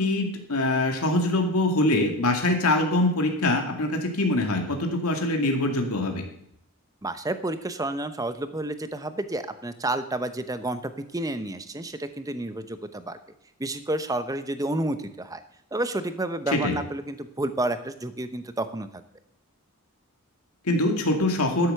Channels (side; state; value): both; normal; correlation 0.31